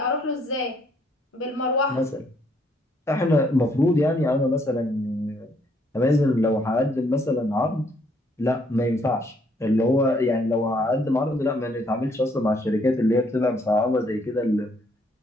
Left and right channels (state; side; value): normal; both; correlation 0.68